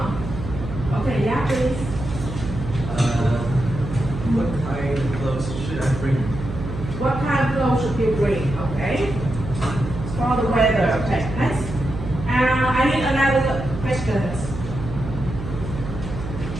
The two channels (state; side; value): noise; right; hum, 8 dB below the sound